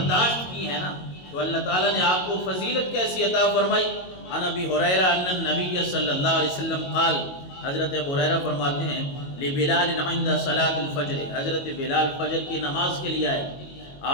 کی ہے نا، تو اللہ تعالیٰ نے آپ کو فضیلت کیسی عطا فرمائی۔ عن ابی ہریرہ ان النبی صلی اللہ علیہ وسلم قال، حضرت ابو ہریرہ فرماتے ہیں لبلال عند صلاۃ الفجر، حضرت بلال فجر کی نماز کے لیے آئے،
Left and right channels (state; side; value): late; right; 22 ms